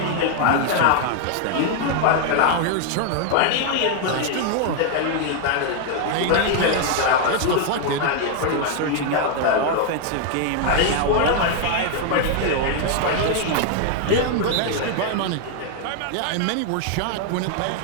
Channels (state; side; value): different; both; correlation 0.00